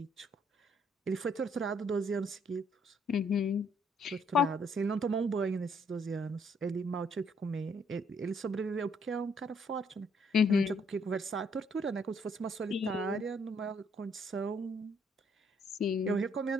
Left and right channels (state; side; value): normal; both; correlation 0.67